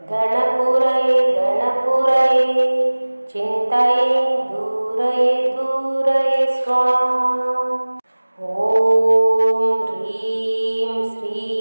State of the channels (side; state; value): both; inverted; correlation -1.00